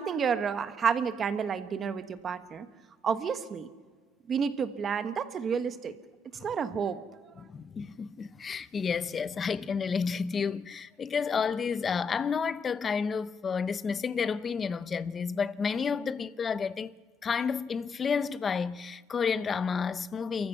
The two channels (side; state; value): both; normal; correlation 0.77